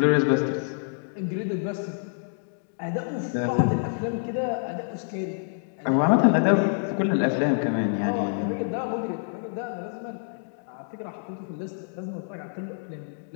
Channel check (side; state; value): right; silent; digital silence